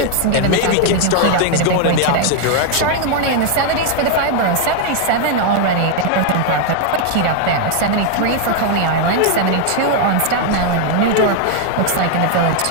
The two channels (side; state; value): both; different; correlation 0.00